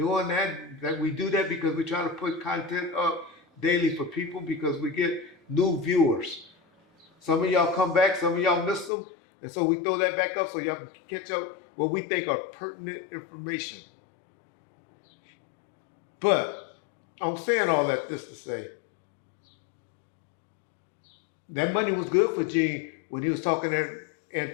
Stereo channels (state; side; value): drops out; right; at 8.9 s